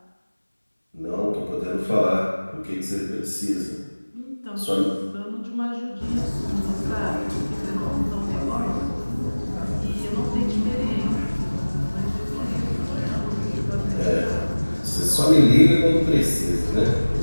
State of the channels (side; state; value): both; inverted; correlation -1.00